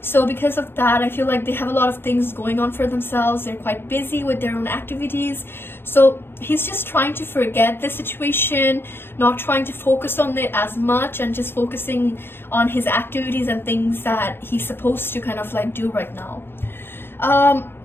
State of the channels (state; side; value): late; right; 0.11 ms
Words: So because of that, I feel like they have a lot of things going on for themselves. They're quite busy with their own activities. So he's just trying to forget the situation, not trying to focus on it as much and just focusing on his activities and things that he's supposed to kind of like do right now.